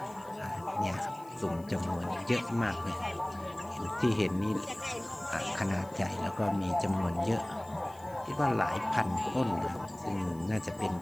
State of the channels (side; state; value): left; noise; hiss, 25 dB below the sound